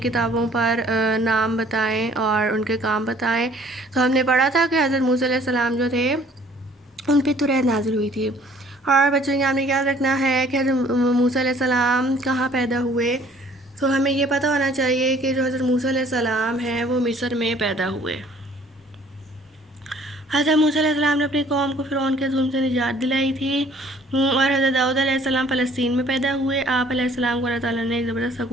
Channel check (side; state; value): both; normal; correlation 0.56